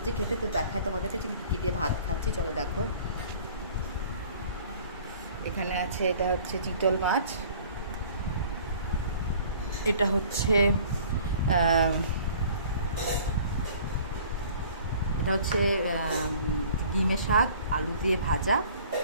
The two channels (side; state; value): both; inverted; correlation -0.49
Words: খেতে। তো দেখায় তোমাদেরকে কী দিয়ে ভাত খাচ্ছি, চলো দেখো। এখানে আছে, এটা হচ্ছে চিতল মাছ, এটা হচ্ছে ডিমের শাক আলু দিয়ে ভাজা।